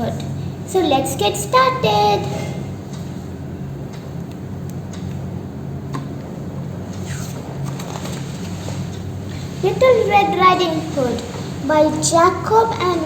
So let's get started. Little Red Riding Hood by Jacob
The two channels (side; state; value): both; identical; correlation 1.00